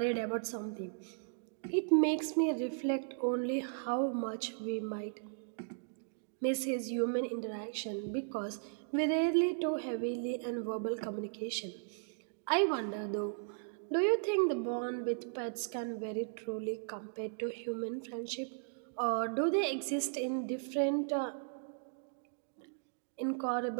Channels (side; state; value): left; silent; digital silence